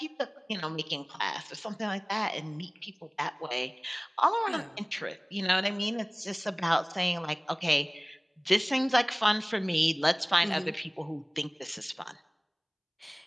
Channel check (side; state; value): both; identical; correlation 1.00